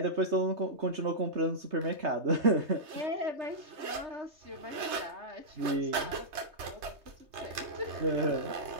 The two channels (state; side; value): late; left; 3.3 ms